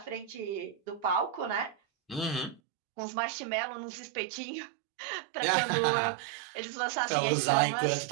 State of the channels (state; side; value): drops out; left; at 2.6 s